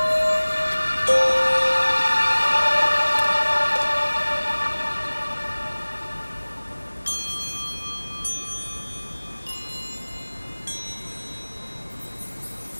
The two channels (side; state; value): both; inverted; correlation -1.00